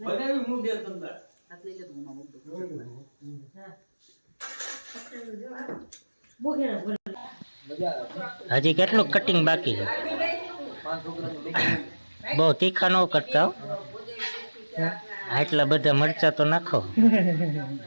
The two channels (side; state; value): both; inverted; correlation -1.00